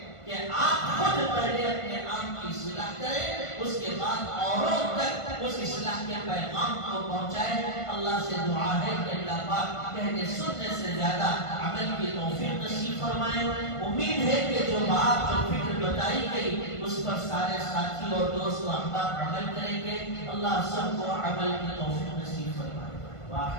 کہ آپ خود پہلے اپنے آپ کی اصلاح کریں، اس کے بعد اوروں تک اس اصلاح کے پیغام کو پہنچائیں. اللہ سے دعا ہے کہ اللہ پاک کہنے سننے سے زیادہ عمل کی توفیق نصیب فرمائے. امید ہے کہ جو بات جو فکر بتائی گئی اس پر سارے ساتھی اور دوست و احباب عمل کریں گے. اللہ سب کو عمل کی توفیق نصیب فرمائے.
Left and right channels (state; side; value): late; right; 1.5 ms